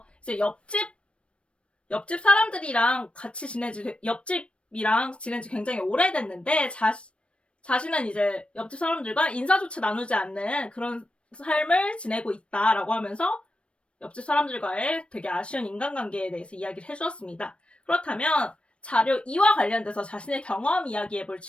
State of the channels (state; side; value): late; right; 0.059 ms